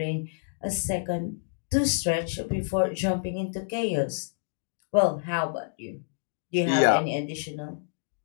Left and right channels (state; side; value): silent; right; digital silence